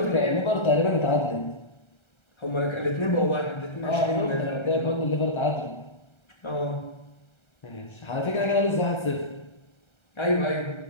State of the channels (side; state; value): right; late; 1.3 ms